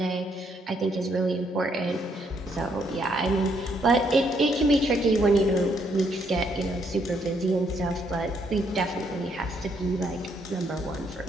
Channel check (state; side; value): normal; both; correlation 0.72